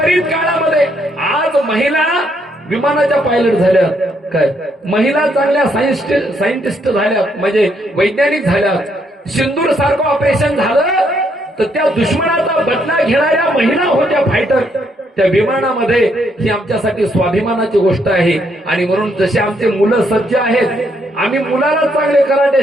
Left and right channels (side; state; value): both; normal; correlation 0.74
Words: काळामध्ये आज महिला विमानाच्या पायलट झाल्या काय, महिला चांगल्या सायंटिस्ट झाल्यात, म्हणजे वैज्ञानिक झाल्यात. सिंदूर सारखं ऑपरेशन झालं तर त्या दुश्मनाचा बदला घेणाऱ्या महिला होत्या फायटर त्या विमानामध्ये. ही आमच्यासाठी स्वाभिमानाची गोष्ट आहे. आणि म्हणून जसे आमचे मुलं सज्ज आहेत, आम्ही मुलाला चांगले